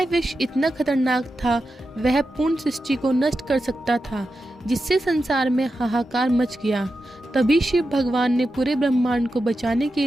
विष इतना खतरनाक था, वह पूर्ण सृष्टि को नष्ट कर सकता था, जिससे संसार में हाहाकार मच गया। तभी शिव भगवान ने पूरे ब्रह्मांड को बचाने के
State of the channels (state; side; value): normal; both; correlation 0.90